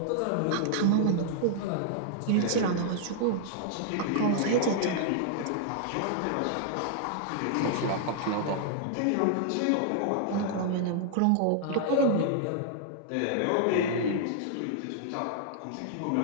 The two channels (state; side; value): different; both; correlation 0.00